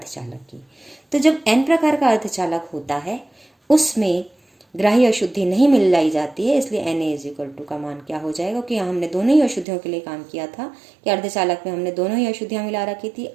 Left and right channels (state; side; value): drops out; left; at 9.7 s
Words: की। तो जब एन प्रकार का अर्धचालक होता है उसमें ग्राही अशुद्धि नहीं मिलाई जाती है, इसलिए Na का मान क्या हो जाएगा, क्योंकि यहाँ हमने दोनों ही अशुद्धियों के लिए काम किया था कि अर्धचालक में हमने दोनों ही अशुद्धियाँ मिला रखी थी,